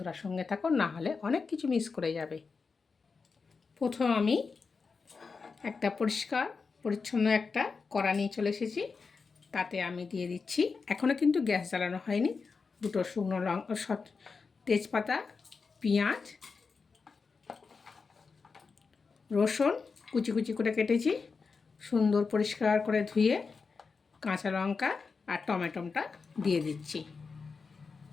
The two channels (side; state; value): right; quieter; 4.9 dB